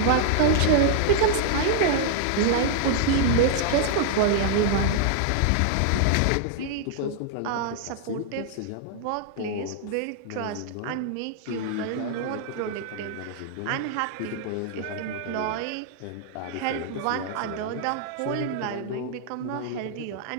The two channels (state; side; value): different; both; correlation -0.01